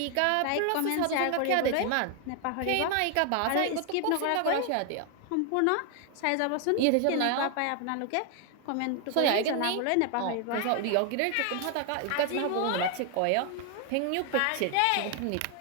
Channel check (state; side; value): different; both; correlation 0.00